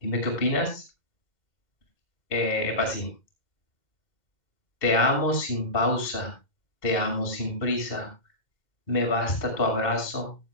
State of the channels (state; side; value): late; right; 2.1 ms